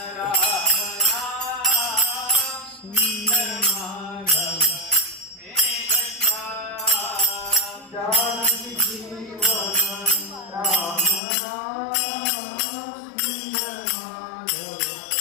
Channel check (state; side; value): drops out; right; at 11.2 s